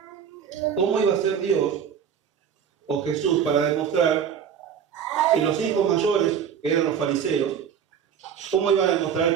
cómo iba a ser Dios o Jesús para demostrar Y los hijos mayores, que eran los fariseos, ¿cómo iban a demostrar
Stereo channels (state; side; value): quieter; left; 7.9 dB